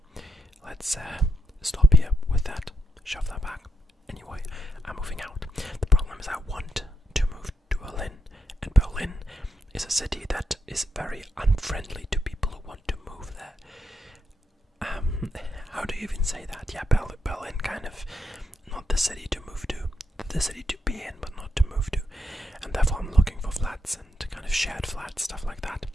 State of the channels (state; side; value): normal; both; correlation 0.81